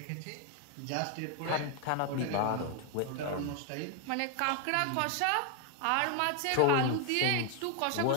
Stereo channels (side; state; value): both; different; correlation 0.00